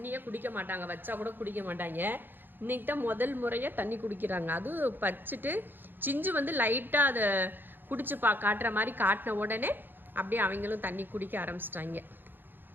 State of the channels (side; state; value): left; late; 0.095 ms